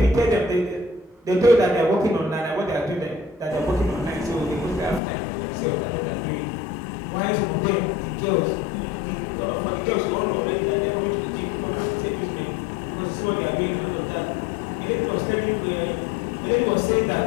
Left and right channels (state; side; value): drops out; right; at 5.0 s